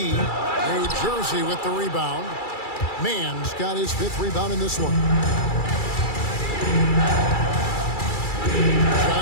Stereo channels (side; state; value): right; late; 2.3 ms